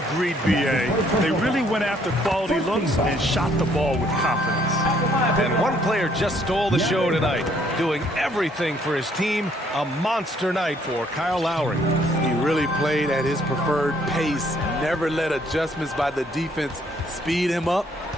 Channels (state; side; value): normal; both; correlation 0.65